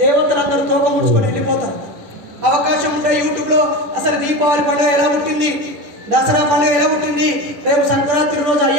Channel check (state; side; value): late; left; 10 ms